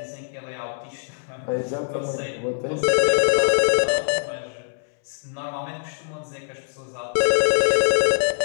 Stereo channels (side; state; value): right; silent; 63 dB below the other